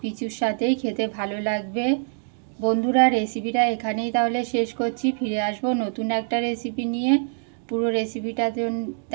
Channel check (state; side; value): silent; left; digital silence